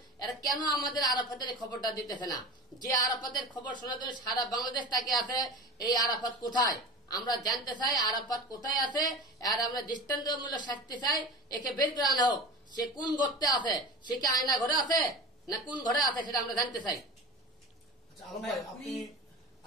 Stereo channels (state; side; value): normal; both; correlation 0.32